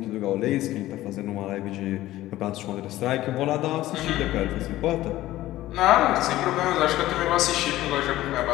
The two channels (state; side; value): quieter; right; 15.6 dB